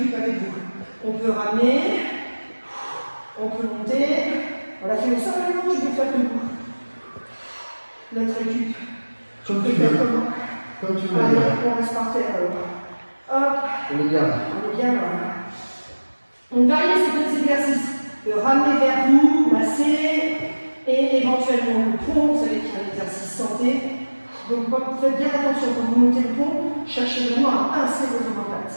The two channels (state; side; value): inverted; both; correlation -1.00